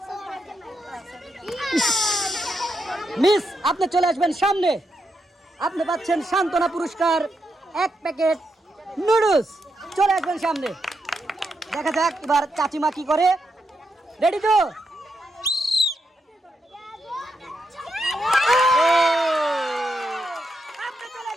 মিস আপনি চলে আসবেন সামনে। আপনি পাচ্ছেন সান্ত্বনা পুরস্কার 1 প্যাকেট নুডলস। চলে আসবেন সামনে। দেখা যাক এবার চাচিমা কি করে। রেডি তো? আপনি চলে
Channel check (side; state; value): both; normal; correlation 0.83